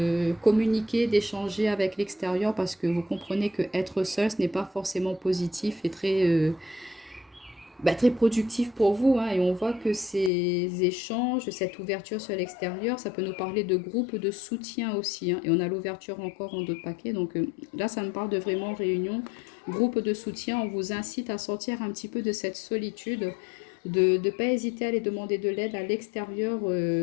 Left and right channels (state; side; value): drops out; right; at 10.3 s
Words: communiquer, d'échanger avec l'extérieur parce que vous comprenez que être seul, ce n'est pas forcément positif et très productif pour vous, hein. Et on voit que ces échanges, cette ouverture sur l'extérieur, ça peut nous parler de groupes de soutien aussi, hein. Et on a l'ouverture encore en d'autres paquets. Donc là, ça me parle de vraiment réunion, groupe de soutien. On vous incite à sortir un petit peu de cette solitude, de ne pas hésiter à aller demander de l'aide à l'extérieur